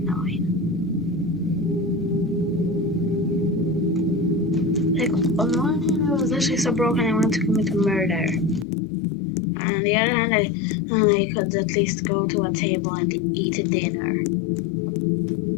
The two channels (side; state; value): right; drops out; at 8.7 s